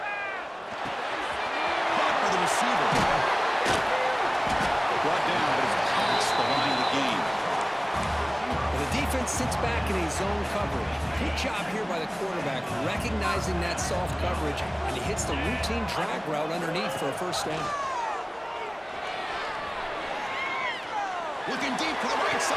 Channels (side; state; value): both; identical; correlation 1.00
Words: Caught by the receiver. drops back in a zone coverage. Good job here by the quarterback, recognizing that soft coverage, and he hits the routine drag route underneath for a first down. Looking deep to the right